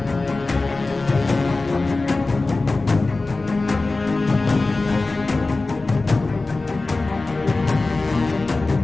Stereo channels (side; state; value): right; quieter; 3.4 dB